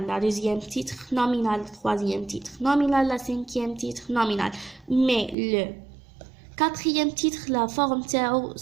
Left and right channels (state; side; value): drops out; left; at 5.4 s